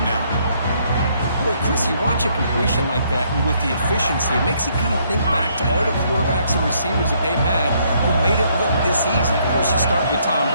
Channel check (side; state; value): both; inverted; correlation -0.69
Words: now. Boy, Chris, you watch a completion like that, and with the efficiency, it makes you kind of think back to all the quarterbacks and receivers that they've had who made it look this easy. Of course, you start with Tom